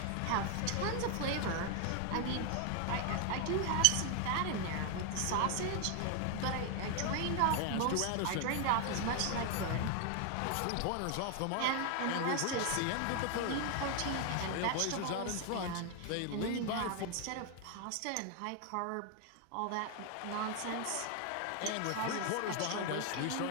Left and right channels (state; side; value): different; both; correlation 0.01